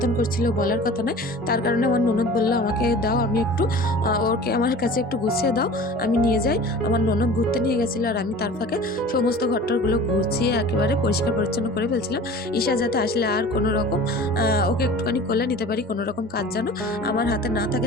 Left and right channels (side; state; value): both; normal; correlation 0.40